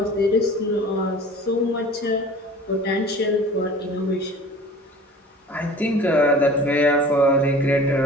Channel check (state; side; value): normal; both; correlation 0.43